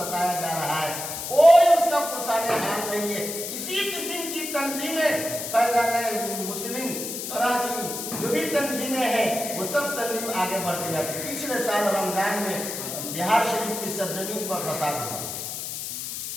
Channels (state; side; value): noise; left; hiss, 6 dB below the sound